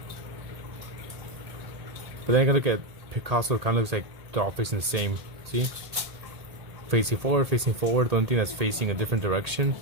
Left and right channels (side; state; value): left; late; 1.8 ms